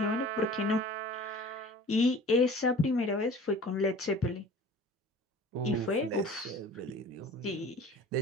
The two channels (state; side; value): normal; both; correlation 0.44